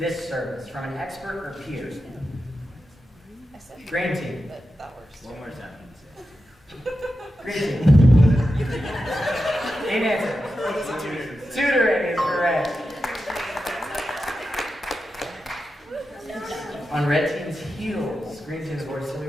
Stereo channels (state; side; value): normal; both; correlation 0.90